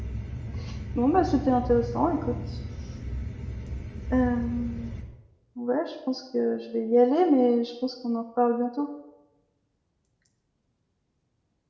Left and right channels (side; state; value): both; identical; correlation 1.00